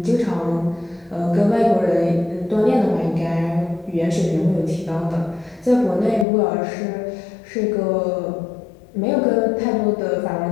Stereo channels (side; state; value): right; drops out; at 6.2 s